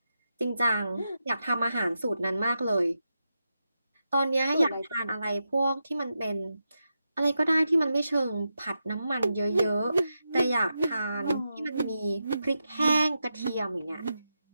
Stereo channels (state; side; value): inverted; both; correlation -0.88